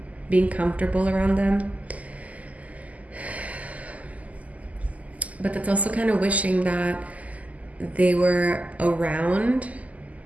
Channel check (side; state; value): left; late; 0.074 ms